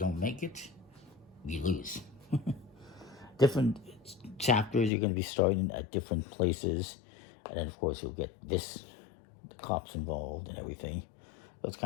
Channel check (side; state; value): right; drops out; at 4.9 s